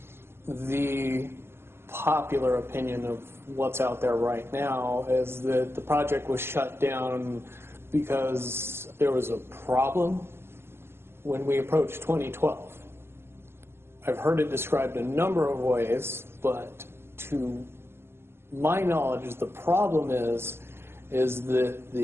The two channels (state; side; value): late; left; 0.12 ms